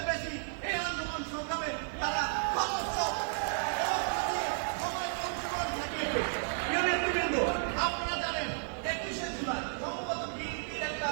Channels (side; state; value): left; silent; digital silence